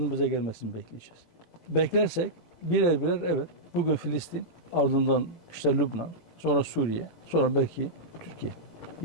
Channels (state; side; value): late; right; 17 ms